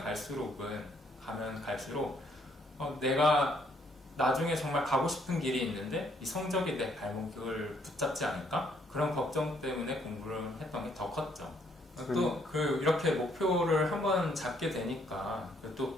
갈수록 내가 나중에 정말 가고 싶은 길이 있는데 이 성적이 내 발목을 붙잡지 않을까? 그런 걱정 때문에 공부를 했던 게 더 컸죠. 또 이렇게 목표를 한번 잡게 되니까 또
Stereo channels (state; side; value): normal; both; correlation 0.68